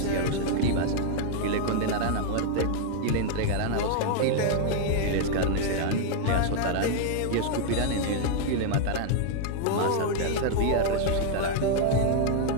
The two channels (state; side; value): different; both; correlation -0.01